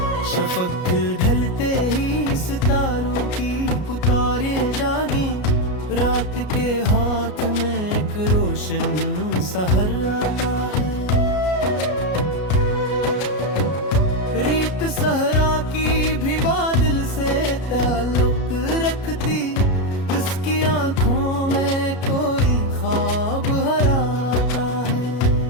शफक ढलते ही सितारों की पुकारें जागी, रात के हाथ में एक रोशन सहर आता है। रीत सहरा की भी बादल से ताल्लुक रखती, इसकी आंखों में कोई ख्वाब हराता है।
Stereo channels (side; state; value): right; late; 33 ms